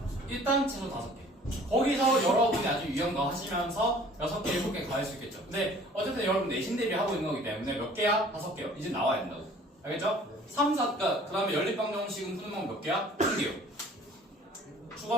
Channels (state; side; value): normal; both; correlation 0.51